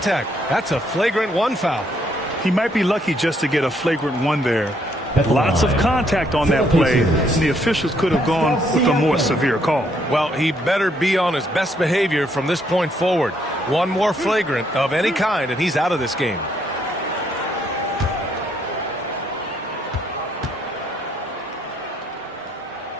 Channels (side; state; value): both; normal; correlation 0.71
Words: That's a flagrant 1 foul. He might be lucky just to get a flagrant 1 there. Lots of contact on that play, and the officials could have gone with a more severe call. Well, he better be on his best behavior from this point forward. One more flagrant of any kind, and he's out of this game.